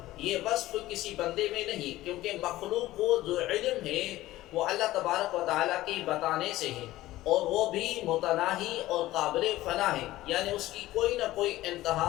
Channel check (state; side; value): quieter; right; 16.3 dB